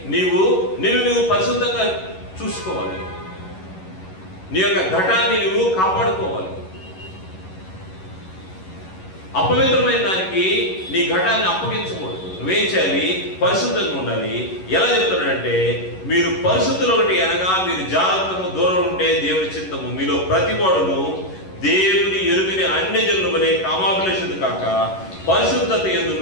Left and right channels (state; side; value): late; right; 11 ms